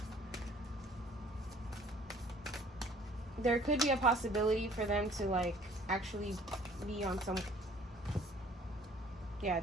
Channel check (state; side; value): normal; both; correlation 0.54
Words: there could be a possibility for them to, like, actually be on some... Yeah,